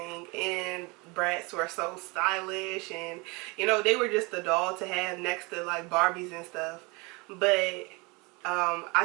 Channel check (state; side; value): quieter; left; 27.3 dB